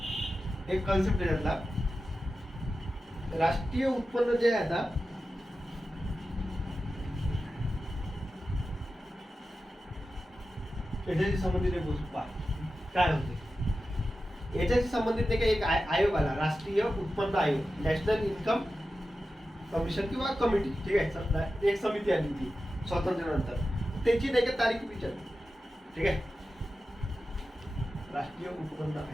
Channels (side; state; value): both; normal; correlation 0.93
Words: एक कॉन्सेप्ट आहे त्यातला, राष्ट्रीय उत्पन्न जे आहे आता याच्याशी संबंधित एक गोष्ट पहा काय होते. याच्याशी संबंधित नाही का एक आयोग आला, राष्ट्रीय उत्पन्न आयोग, नॅशनल इन्कम कमिशन किंवा कमिटी, ठीक आहे, एक समिती आली ती स्वातंत्र्यानंतर, त्याची नाही का तारीख विचारली, ठीक आहे. राष्ट्रीय उत्पन्न